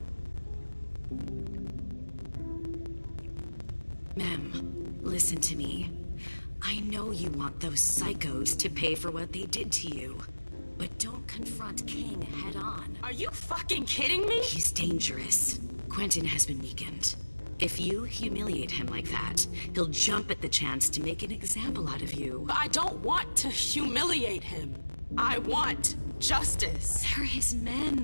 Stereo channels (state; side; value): inverted; both; correlation -1.00